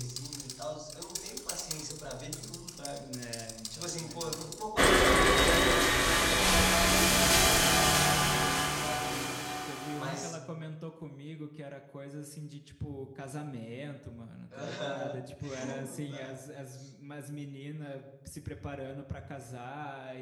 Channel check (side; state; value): both; identical; correlation 1.00